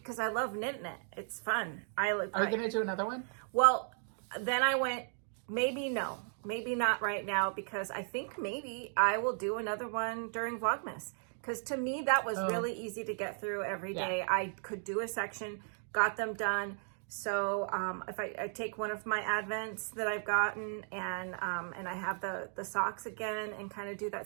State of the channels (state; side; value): silent; left; 54 dB below the other